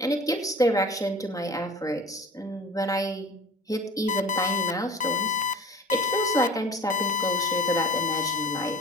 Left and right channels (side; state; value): both; normal; correlation 0.41